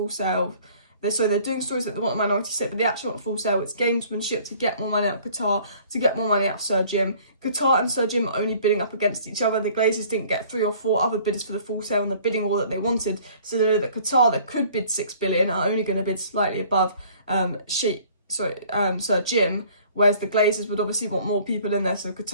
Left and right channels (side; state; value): both; inverted; correlation -0.54